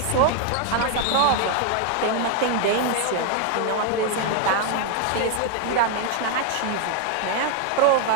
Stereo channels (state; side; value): different; both; correlation 0.01